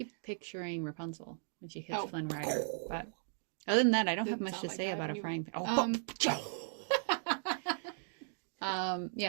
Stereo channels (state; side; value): silent; left; digital silence